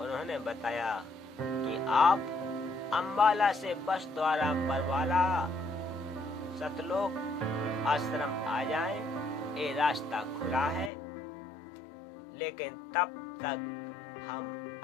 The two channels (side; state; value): right; drops out; at 10.9 s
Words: बताया कि आप अंबाला से बस द्वारा बरवाला सतलोक आश्रम आ जाएं, ये रास्ता खुला है। लेकिन तब तक हम